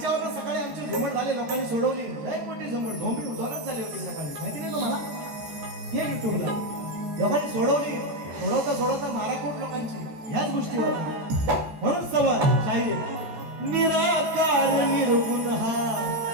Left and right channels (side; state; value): left; late; 14 ms